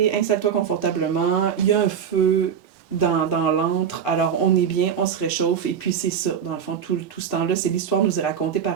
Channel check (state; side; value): quieter; left; 7.8 dB